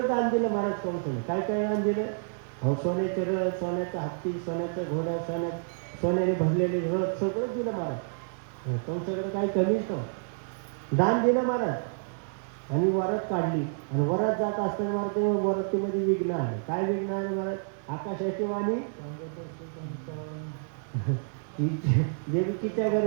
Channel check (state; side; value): silent; left; 59 dB below the other